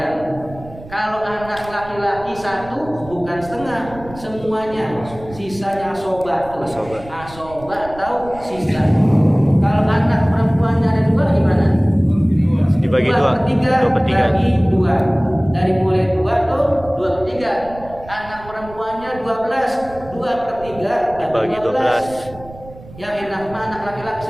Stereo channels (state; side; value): noise; right; rumble, 18 dB below the sound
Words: Kalau anak laki-laki 1 bukan setengah, semuanya. Sisanya asoba tuh. Asoba atau sisa. Kalau anak perempuannya ada 2 gimana? dibagi 2 per 3 bagi 2. Dari mulai 2 tuh 2/3. Anak perempuannya 12, 2/3 bagi 12. Yang enak mah anak laki-laki